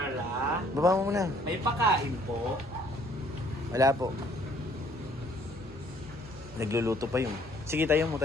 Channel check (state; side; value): normal; both; correlation 0.61